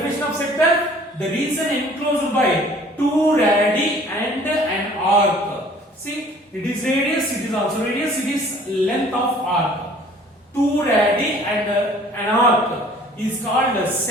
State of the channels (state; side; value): normal; both; correlation 0.52